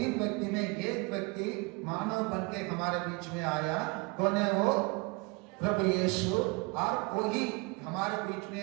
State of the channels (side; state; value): left; quieter; 28.1 dB